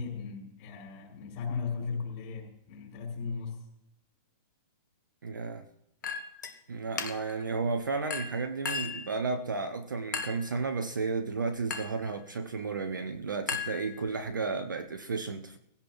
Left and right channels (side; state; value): both; inverted; correlation -0.52